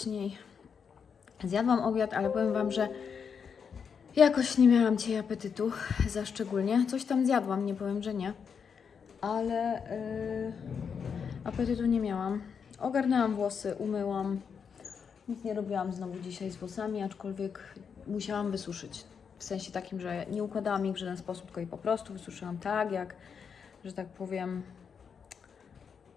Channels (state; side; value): quieter; right; 6.5 dB